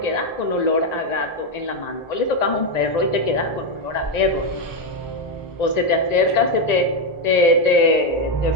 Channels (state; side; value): late; right; 1.9 ms